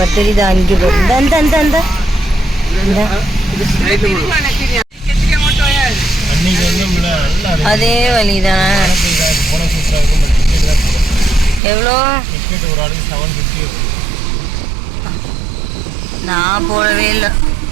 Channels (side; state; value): left; drops out; at 11.6 s